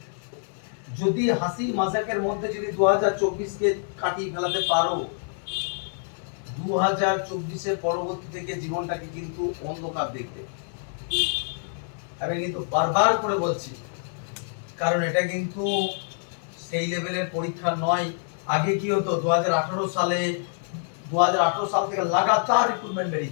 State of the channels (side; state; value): right; silent; digital silence